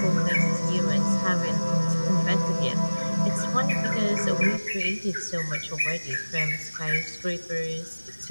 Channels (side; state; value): both; inverted; correlation -1.00